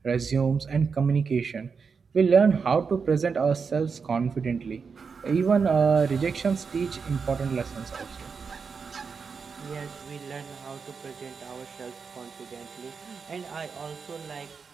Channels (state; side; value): quieter; left; 5.5 dB